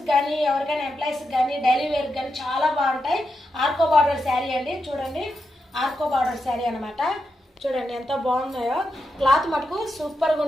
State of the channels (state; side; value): normal; both; correlation 0.86